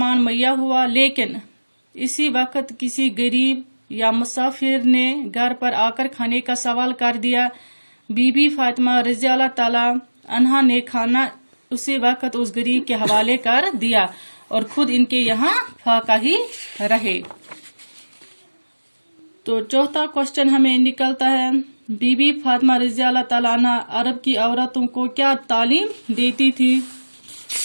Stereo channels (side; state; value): both; inverted; correlation -1.00